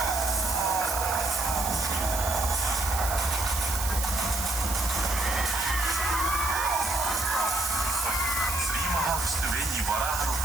శ్రీ మహావిష్ణువే ఈ వరాహ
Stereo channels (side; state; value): right; noise; hiss, 4 dB below the sound